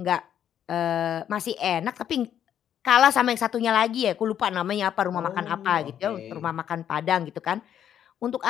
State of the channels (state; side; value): quieter; right; 9.7 dB